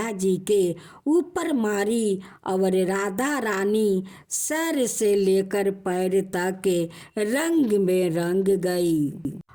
जी के ऊपर मारी और राधा रानी सर से लेकर पैर तक रंग में रंग गई।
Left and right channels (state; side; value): identical; both; correlation 1.00